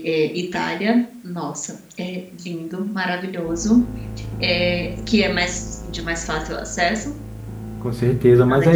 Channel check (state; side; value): identical; both; correlation 1.00